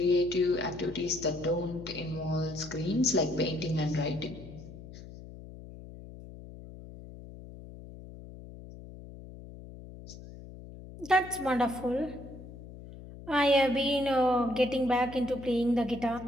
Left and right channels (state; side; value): noise; left; hum, 15 dB below the sound